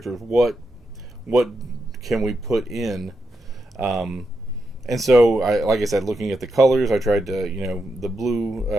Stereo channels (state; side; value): normal; both; correlation 0.85